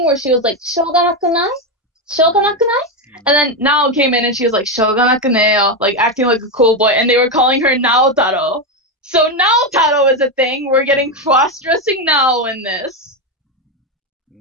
where she was like Shoganakunai? Shoganakunai? And then Nao came in and she was like Shoganakuneo, like acting like a cool boy, and they were calling her Naotaro. So Naotaro is a thing. We're getting cross-dressing Nao in this.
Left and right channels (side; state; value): both; normal; correlation 0.09